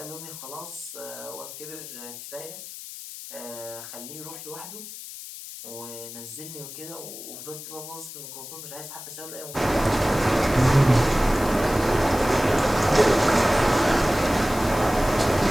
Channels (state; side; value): noise; left; hiss, 12 dB below the sound